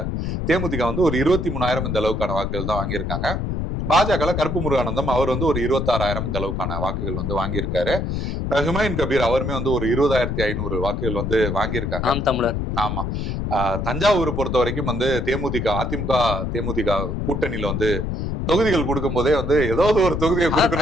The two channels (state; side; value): noise; left; rumble, 2 dB below the sound